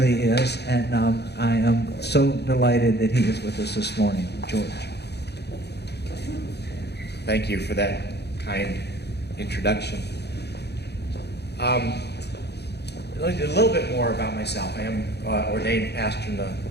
is. And I am so delighted that he is with us this morning. George. Thank you for that kind introduction. A little bit more about myself. I am ordained pastor in the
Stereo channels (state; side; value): late; right; 0.48 ms